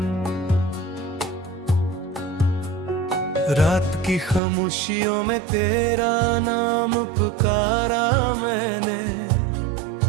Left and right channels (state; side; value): drops out; left; at 4.4 s